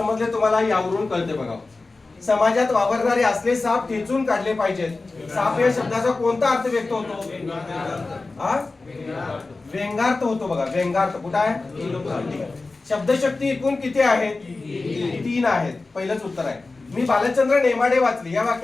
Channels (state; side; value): quieter; right; 3.5 dB